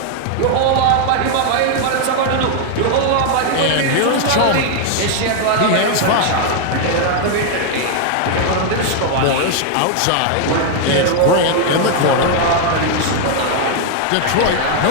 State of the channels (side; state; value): both; different; correlation 0.00